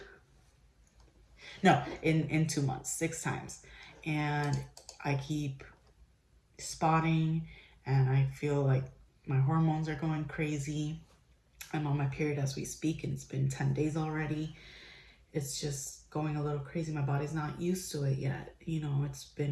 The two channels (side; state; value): both; identical; correlation 1.00